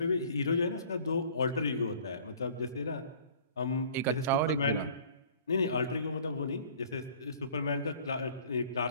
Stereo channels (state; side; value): inverted; both; correlation -0.50